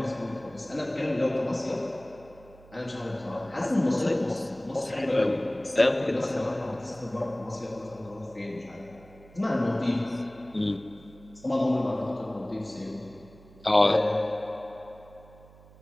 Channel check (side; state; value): right; noise; hum, 23 dB below the sound